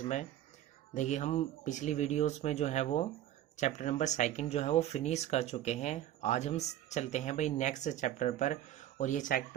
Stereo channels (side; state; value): left; quieter; 12.2 dB